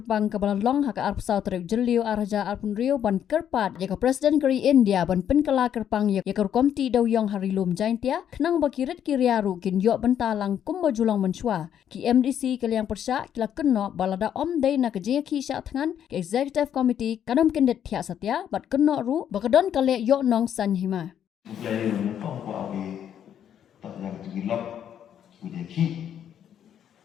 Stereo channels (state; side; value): quieter; right; 9.5 dB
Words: kabalalong haga arp South Jelio Araja Arpunrio ban kerpat yaka President kari India ban penkala kerpang yaka komti dawyong harilum jaintia kenang bakirit kiriaru kin yok bentalang kumba julang menshwa ki MDC kaliang persya kila kenno balada om day na kajinga ki sya tangan ke Executive Committee kadam kendet thia satya bat kenno ru bakadon kale yok nong sanhima Jadi menempang kuah di tak yang tergilap kemudian ki